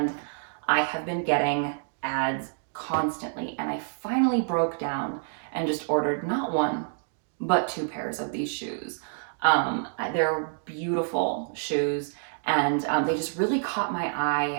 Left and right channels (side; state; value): left; silent; digital silence